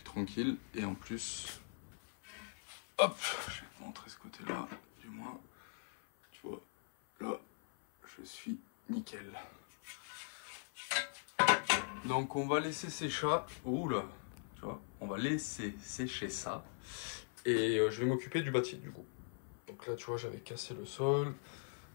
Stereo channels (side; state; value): right; silent; 51 dB below the other